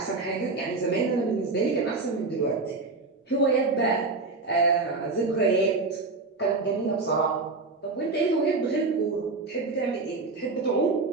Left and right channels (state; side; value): quieter; left; 3.7 dB